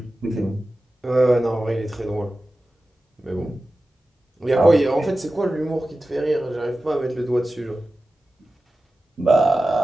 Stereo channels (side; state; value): both; normal; correlation 0.94